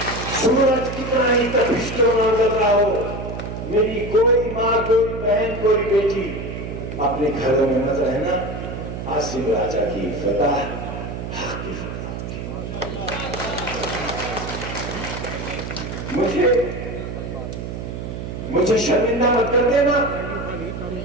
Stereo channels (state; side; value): noise; right; hum, 7 dB below the sound